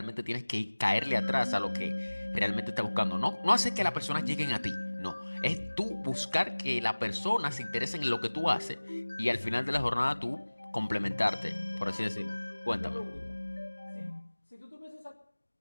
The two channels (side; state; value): both; inverted; correlation -1.00